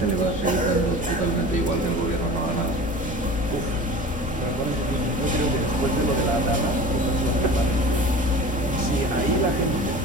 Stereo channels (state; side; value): normal; both; correlation 0.37